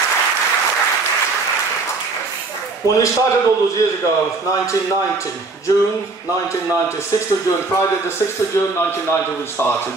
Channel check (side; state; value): left; quieter; 3.8 dB